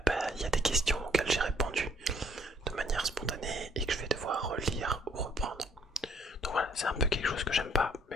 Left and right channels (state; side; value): normal; both; correlation 0.63